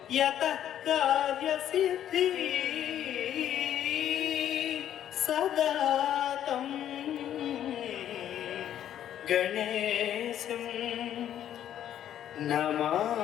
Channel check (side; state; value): right; quieter; 10.8 dB